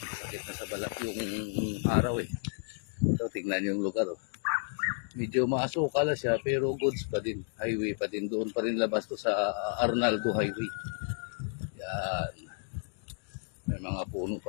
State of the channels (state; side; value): silent; right; digital silence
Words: Sakit na sa balat yung araw eh. So tingnan yung lugar oh. Medyo maasuka lang siya pero goods pa din. Highway pa din. Doon pa rin labas to sa Arnaldo Highway. Yan. May mga puno pa